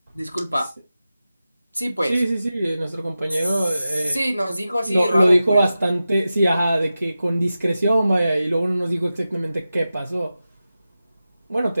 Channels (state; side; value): inverted; both; correlation -0.93